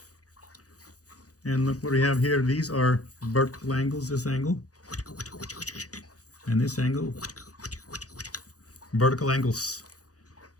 And look what we have here. These are vertical angles, this angle. And this angle. Vertical angles.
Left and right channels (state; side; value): late; right; 0.67 ms